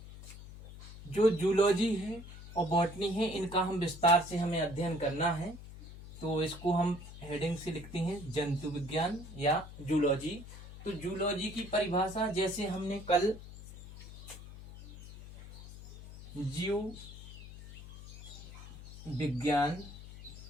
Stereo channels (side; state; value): left; noise; hum, 14 dB below the sound